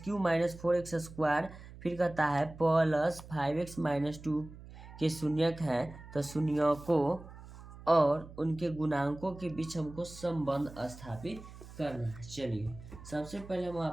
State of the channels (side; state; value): right; noise; hum, 16 dB below the sound